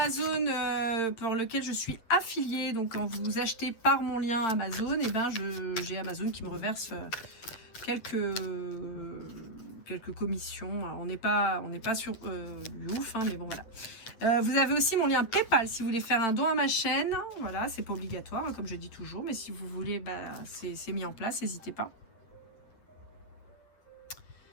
pour lequel je suis affiliée. Donc quand vous achetez par mon lien Amazon, et ben j'ai Amazon qui me reverse quelques commissions. Alors, on n'est pas sur du ouf, hein, mais bon voilà. Vous avez aussi mon lien PayPal si vous voulez faire un don à ma chaîne. Voilà, c'est pas obligatoire, hein, comme je dis toujours, mais si vous voulez, bah, c'est mis en place, n'hésitez pas.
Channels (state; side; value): late; right; 9.0 ms